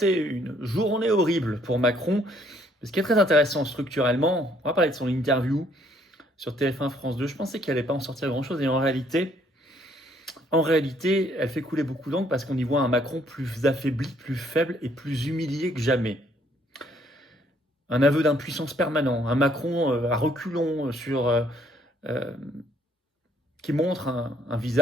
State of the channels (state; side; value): normal; both; correlation 0.65